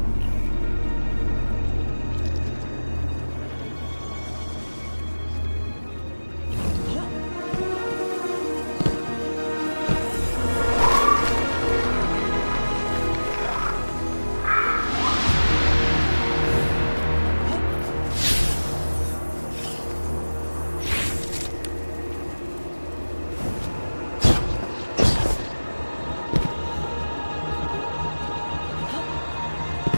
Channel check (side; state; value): both; inverted; correlation -1.00